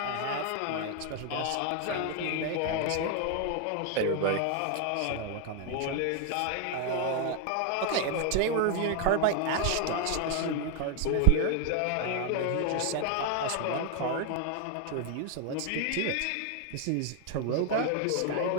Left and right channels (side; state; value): both; different; correlation 0.00